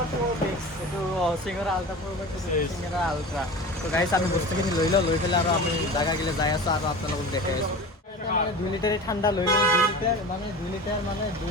প্ৰো ম্যাক্স এটো সিংৰা আলট্ৰা প্ৰো ম্যাক্স সিংৰা আলট্ৰা তো গাইস আমি বস্তুখিনি লৈ পেলাই আৰু আমি জাগা গিলে যাই আছো আৰু আপোনালোকক দেখাই আছো মানে 2 লিটাৰ ঠাণ্ডা লৈ লওঁ 2 লিটাৰ মানে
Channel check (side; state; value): both; normal; correlation 0.33